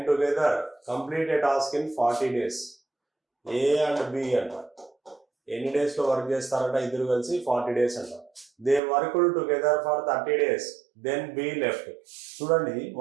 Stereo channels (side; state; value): left; drops out; at 8.8 s